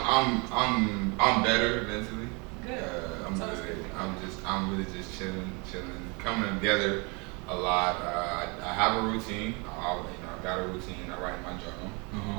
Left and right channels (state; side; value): quieter; left; 30.6 dB